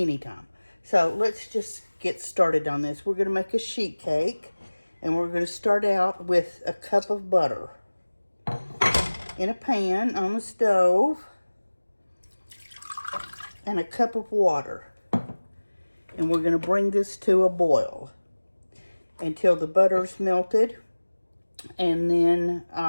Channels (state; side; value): inverted; both; correlation -1.00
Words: So let's just get started on this. We're going to make a sheet cake, and we're going to start out with a cup of butter in a pan on the stove, and a cup of water. And we're going to bring this to a boil until the butter's melted, and then